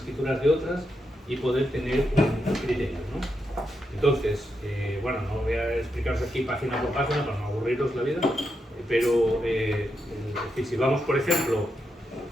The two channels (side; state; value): both; normal; correlation 0.84